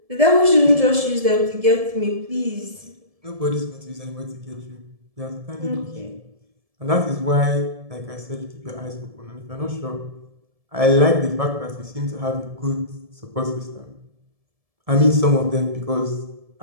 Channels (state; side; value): late; left; 1.7 ms